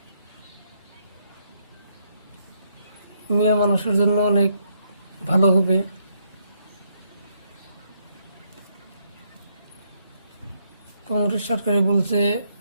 মিয়া মানুষের জন্য অনেক ভালো হবে। কংগ্রেস সরকারে বলছে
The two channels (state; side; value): inverted; both; correlation -0.75